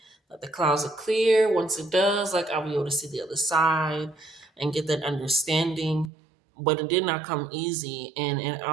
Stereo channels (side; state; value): left; drops out; at 6.1 s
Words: like the clouds are clear. Once it does, like I'll be able to see the other side and get that understanding. But it did not come easy, and it